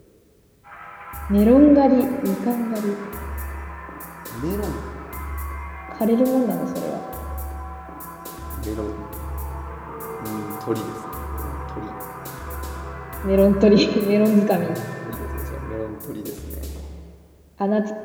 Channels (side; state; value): both; identical; correlation 1.00